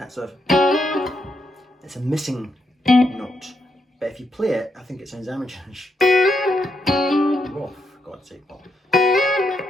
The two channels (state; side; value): normal; both; correlation 0.81